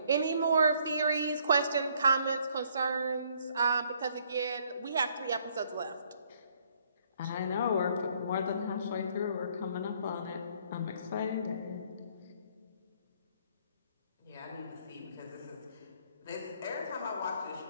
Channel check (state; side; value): inverted; both; correlation -0.65